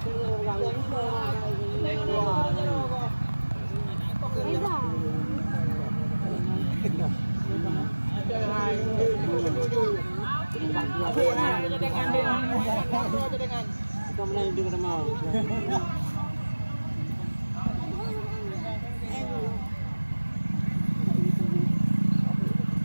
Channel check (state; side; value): inverted; both; correlation -1.00